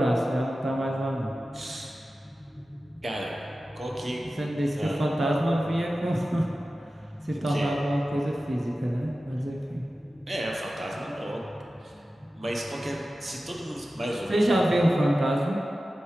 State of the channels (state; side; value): normal; both; correlation 0.95